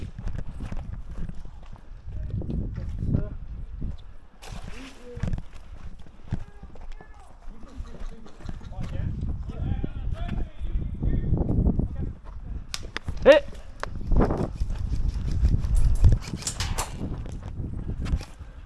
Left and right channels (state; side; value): identical; both; correlation 1.00